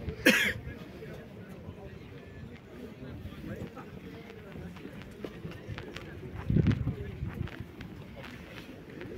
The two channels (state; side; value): identical; both; correlation 1.00